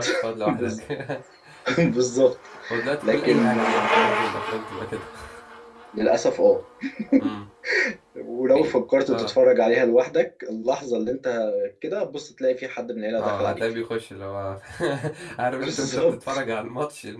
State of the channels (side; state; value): both; identical; correlation 1.00